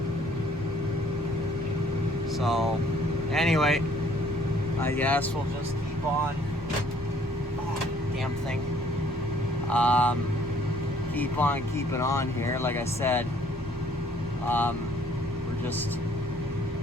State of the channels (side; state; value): both; normal; correlation 0.61